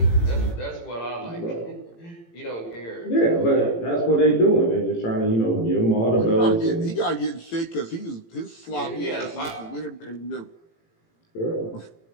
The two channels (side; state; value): right; late; 18 ms